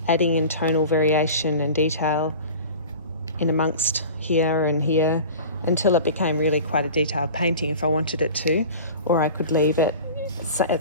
adding in tonal variation and detail in amongst here and here until it became really quite a detailed painting if I wanted it to, or I could leave it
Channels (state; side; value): inverted; both; correlation -0.38